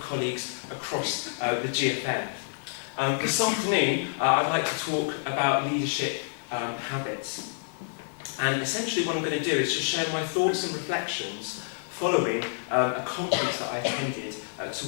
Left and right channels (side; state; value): right; silent; digital silence